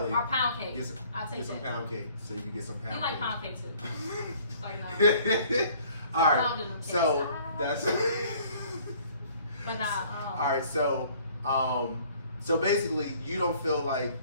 or pound cake. I'll take get some that. pound cake so you can get some pound You cake. like pound cake too. Like no. All right. Pounding them So cakes. that's. But nah. All right. So basically, you don't feel like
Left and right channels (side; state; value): both; inverted; correlation -0.56